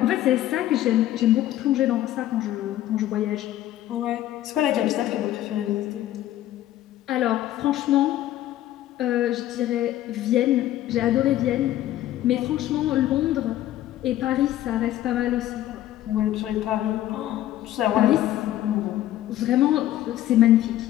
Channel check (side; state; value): right; quieter; 13.6 dB